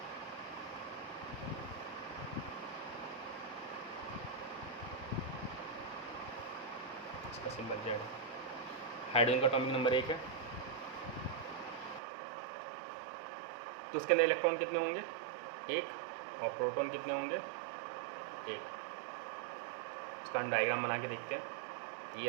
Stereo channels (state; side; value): drops out; left; at 12.0 s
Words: इसका सिंबल Z है। हाइड्रोजन का एटॉमिक नंबर 1 है, तो उसके अंदर इलेक्ट्रॉन कितने होंगे, 1, और प्रोटॉन कितने होंगे, 1। इसका हम डायग्राम बना के देखते हैं। ये